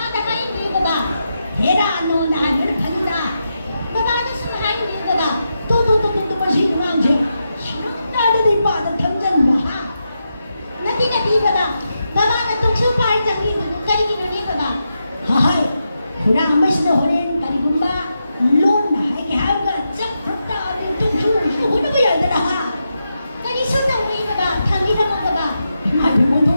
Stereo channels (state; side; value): inverted; both; correlation -0.86